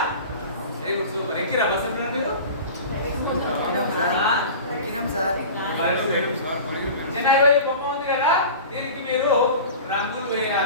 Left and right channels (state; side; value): inverted; both; correlation -0.36